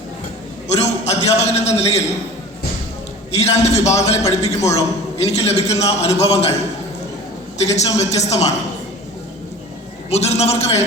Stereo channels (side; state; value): both; normal; correlation 0.39